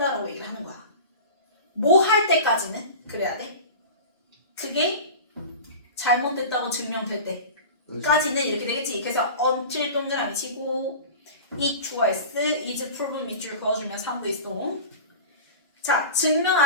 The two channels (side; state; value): both; inverted; correlation -0.34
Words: 얘기를 하는 거야. 뭐 할 때까지는 그래야 돼. 그게 잘못됐다고 증명될 때까지는 이렇게 되겠지. 그래서 until 동그라미 치고 it was, is proven 밑줄 그어주면 3부 있어. 자, 증명